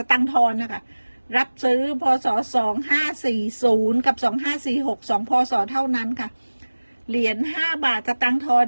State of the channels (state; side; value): inverted; both; correlation -1.00